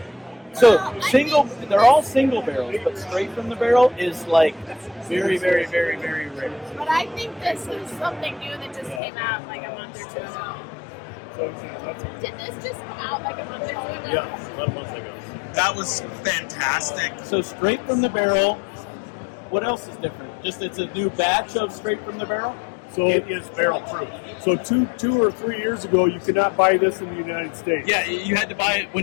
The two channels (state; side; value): drops out; right; at 9.0 s